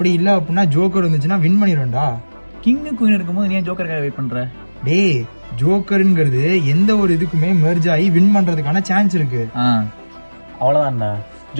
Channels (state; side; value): inverted; both; correlation -1.00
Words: இல்ல அப்படின்னா ஜோக்கர் வந்துச்சுன்னா வின் பண்ணிடுவேன்டா. கிங்கு குயின் இருக்கும்போது நீ ஜோக்கருக்காக வெயிட் பண்ற? டேய் ஜோக்கருங்கிறது எந்த ஒரு இதுக்குமே மெர்ஜ் ஆகி வின் பண்றதுக்கான சான்ஸ் இருக்கு. அவ்வளவுதான்டா.